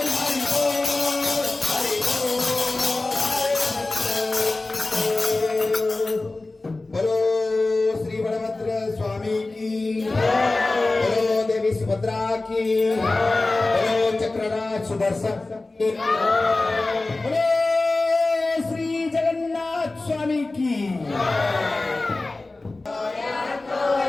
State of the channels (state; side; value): quieter; right; 3.2 dB